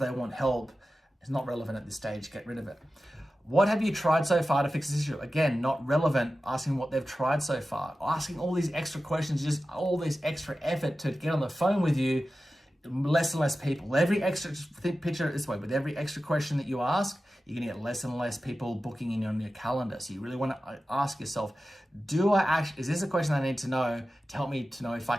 want help. It's not relevant at this stage. Get rid of it. What have you tried so far to fix this issue? Again, not relevant. Asking what they've tried so far. Asking all these extra questions, just all this extra effort to get on the phone with you. Less and less people. Every extra, picture it this way, with every extra question that you ask, you're going to get less and less people booking in on your calendar. So you really want to ask yourself, is this a question I need to know to help me to know if I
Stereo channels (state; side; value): normal; both; correlation 0.94